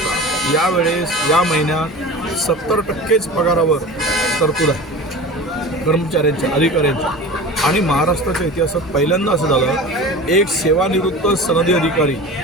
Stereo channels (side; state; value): both; normal; correlation 0.35